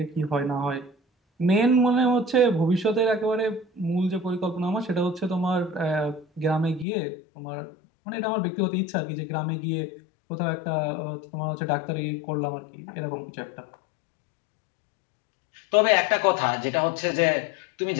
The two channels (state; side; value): drops out; right; at 6.9 s